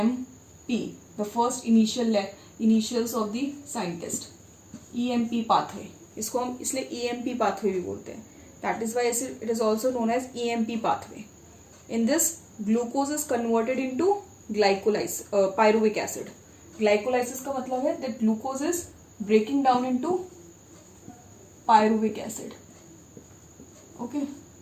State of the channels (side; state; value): both; identical; correlation 1.00